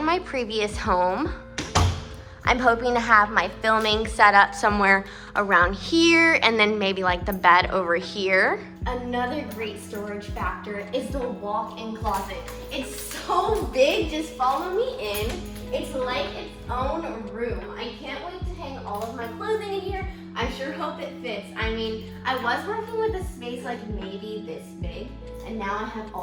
my previous home. I'm hoping to have my filming set up somewhere around here and then maybe like the bed over here. Another great storage factor is the walk-in closet. It's so big, just follow me in. It's like its own room. I can't wait to hang all of my clothing in here. I sure hope it fits. I mean, I was working with a space like maybe this big, and now I have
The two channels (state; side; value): identical; both; correlation 1.00